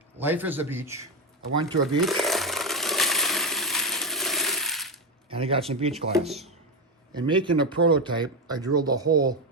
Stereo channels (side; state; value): both; normal; correlation 0.12